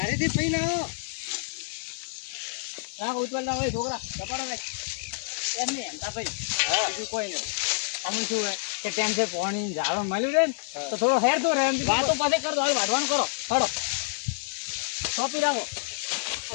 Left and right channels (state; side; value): silent; right; 60 dB below the other